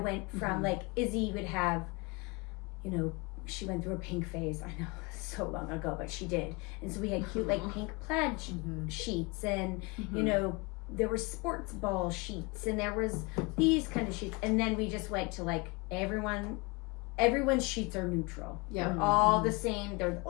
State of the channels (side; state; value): right; quieter; 27.3 dB